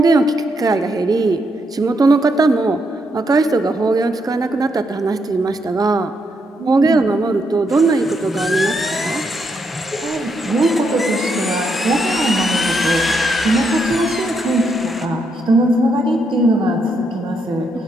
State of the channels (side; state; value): both; normal; correlation 0.78